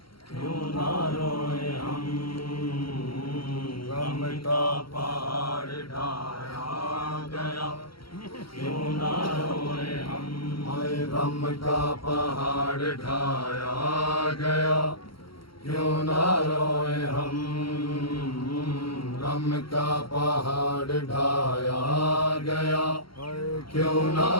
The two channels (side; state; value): right; late; 0.74 ms